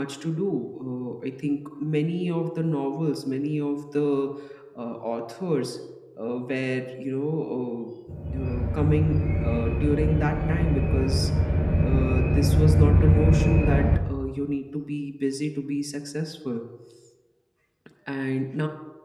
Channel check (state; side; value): identical; both; correlation 1.00